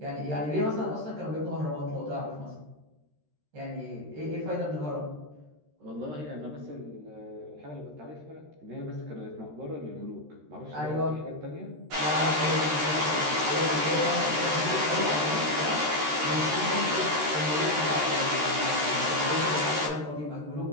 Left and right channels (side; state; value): left; late; 13 ms